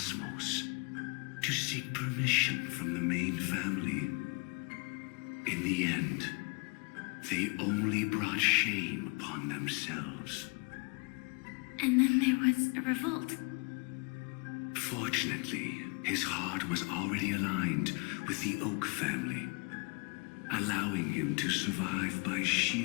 to seek permission from the main family. In the end, they only brought shame upon themselves. And then there was a revolt. Fortunately, his heart was already aligned with the Oak family, allowing him to survive by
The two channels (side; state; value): right; quieter; 31.7 dB